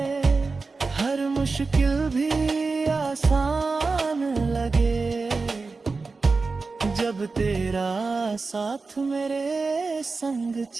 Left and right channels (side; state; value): left; quieter; 4.1 dB